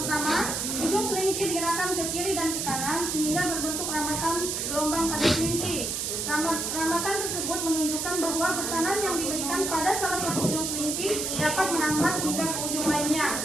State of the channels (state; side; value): noise; right; hiss, 2 dB below the sound